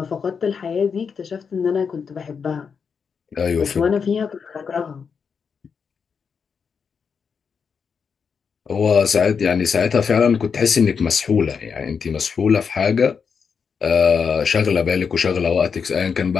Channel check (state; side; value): quieter; right; 6.1 dB